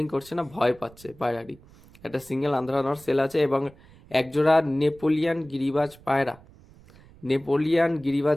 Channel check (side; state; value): right; noise; rumble, 24 dB below the sound